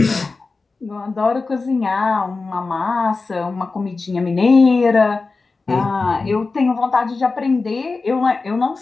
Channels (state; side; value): quieter; right; 4.0 dB